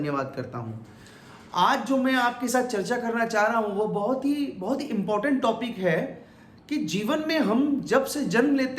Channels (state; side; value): identical; both; correlation 1.00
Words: करता हूँ। आज जो मैं आपके साथ चर्चा करना चाह रहा हूँ वो बहुत ही इम्पोर्टेंट टॉपिक है कि जीवन में हम जब से जन्म